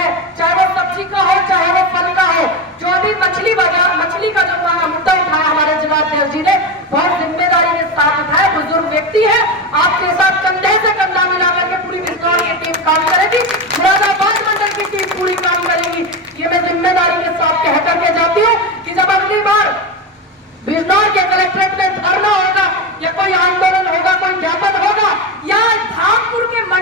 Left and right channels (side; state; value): both; normal; correlation 0.18